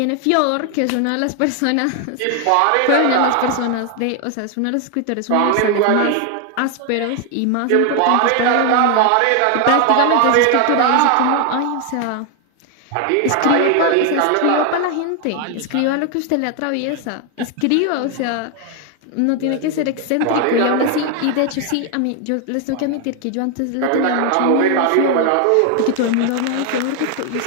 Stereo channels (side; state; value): both; different; correlation 0.00